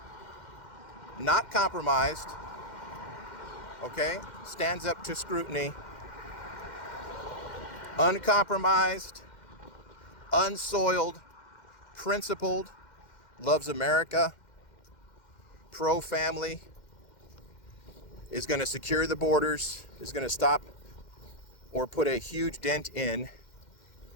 not compromised, okay, stands up to scrutiny, uncompromised, unsoiled, principled, loves America, pro-family, is going to secure the borders, is going to stop or put a huge dent in,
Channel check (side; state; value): right; late; 2.1 ms